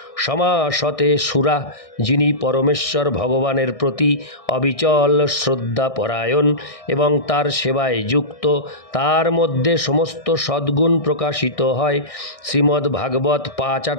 সমাসতে সুরা। যিনি পরমেশ্বর ভগবানের প্রতি অবিচল শ্রদ্ধাপরায়ণ এবং তার সেবায় যুক্ত, তার মধ্যে সমস্ত সদ্গুণ প্রকাশিত হয়। শ্রীমদ্ ভাগবত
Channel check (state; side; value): late; right; 1.6 ms